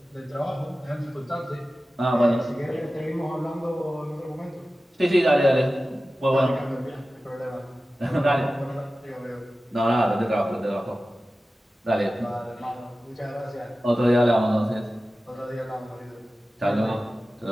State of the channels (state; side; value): normal; both; correlation 0.95